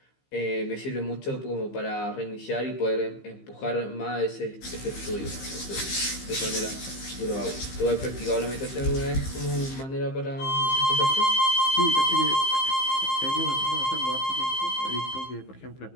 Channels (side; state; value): right; late; 15 ms